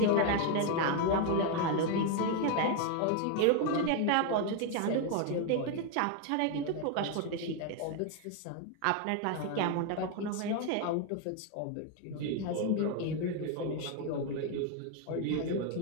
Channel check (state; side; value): different; both; correlation 0.01